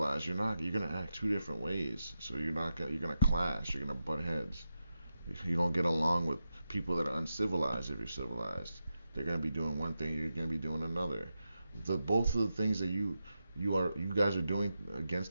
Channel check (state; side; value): inverted; both; correlation -0.89